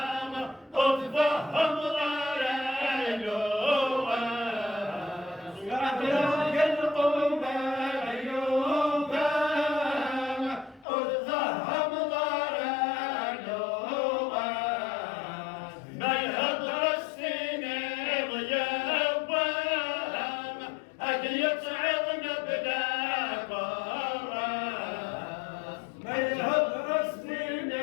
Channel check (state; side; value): drops out; right; at 10.9 s